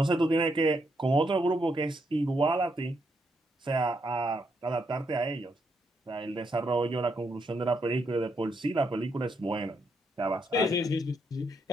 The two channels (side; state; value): both; normal; correlation 0.78